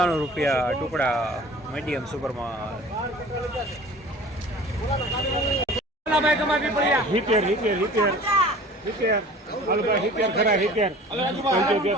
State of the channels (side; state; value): both; normal; correlation 0.44